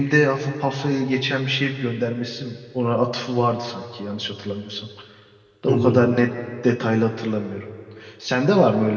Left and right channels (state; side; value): identical; both; correlation 1.00